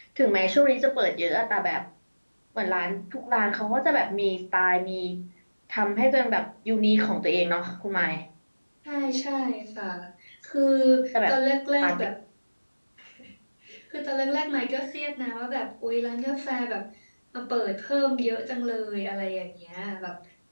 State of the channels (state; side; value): inverted; both; correlation -1.00